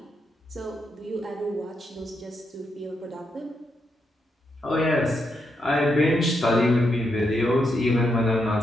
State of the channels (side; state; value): both; normal; correlation 0.81